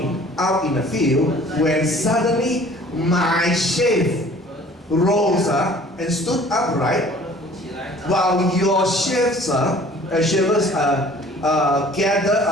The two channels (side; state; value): both; normal; correlation 0.50